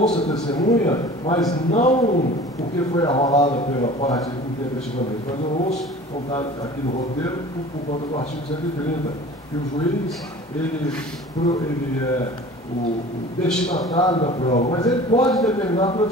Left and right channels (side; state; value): both; normal; correlation 0.42